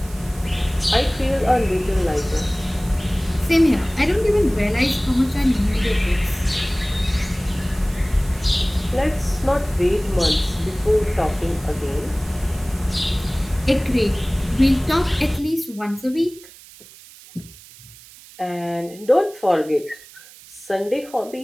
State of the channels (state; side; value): noise; right; hiss, 21 dB below the sound